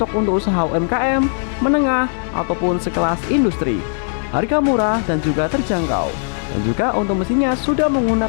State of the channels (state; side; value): silent; right; 67 dB below the other